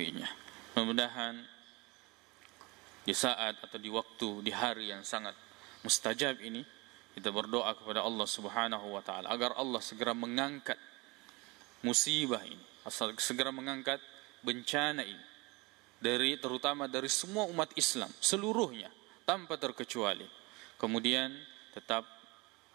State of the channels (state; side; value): quieter; left; 25.2 dB